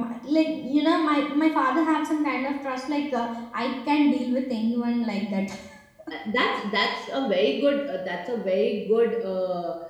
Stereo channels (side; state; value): both; identical; correlation 1.00